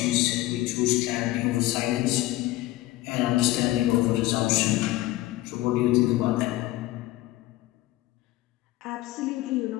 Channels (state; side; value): quieter; right; 17.4 dB